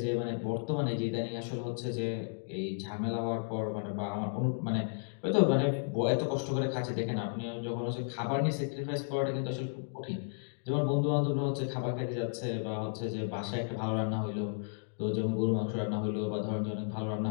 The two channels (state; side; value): silent; right; digital silence